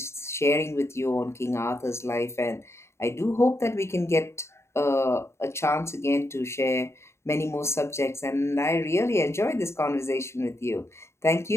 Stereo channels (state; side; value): late; right; 0.13 ms